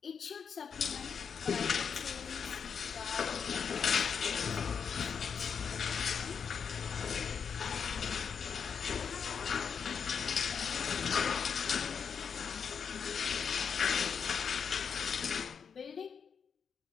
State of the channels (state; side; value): quieter; right; 6.6 dB